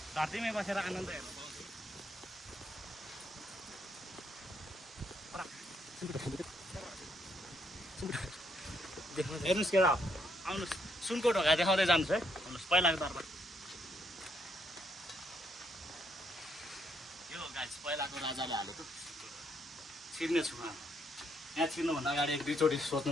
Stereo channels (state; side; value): normal; both; correlation 0.73